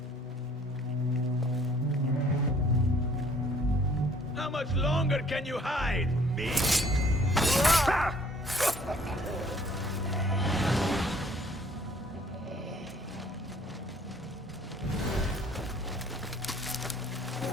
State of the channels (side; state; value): both; normal; correlation 0.58